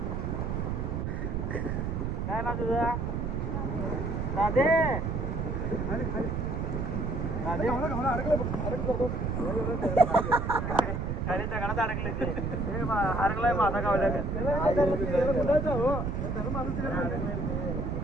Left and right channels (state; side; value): noise; right; rumble, 1 dB below the sound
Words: काय ना तुझा राधे राधे खाली दगडात अडकले ते अडकलाय माझा गावल्या